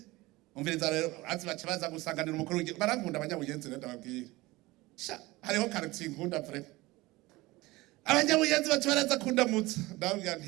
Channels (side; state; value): left; quieter; 20.6 dB